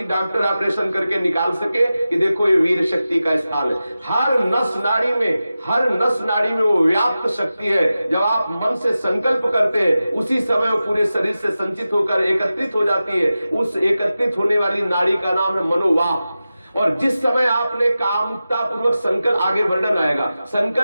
डॉक्टर ऑपरेशन करके निकाल सके कि देखो ये वीर शक्ति का स्थान है। हर नस नाड़ी में वो व्याप्त शक्ति है। जब आप मन से संकल्प करते हैं उसी समय वो पूरे शरीर से संचित होकर एकत्रित हो जाती है। उस एकत्रित होने वाली नाड़ी का नाम है मनोवाह। और जिस समय आपने कामता पूर्वक संकल्प, आगे वर्णन आएगा,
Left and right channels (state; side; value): inverted; both; correlation -0.94